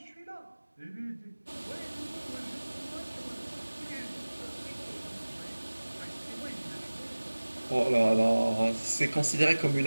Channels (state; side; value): inverted; both; correlation -1.00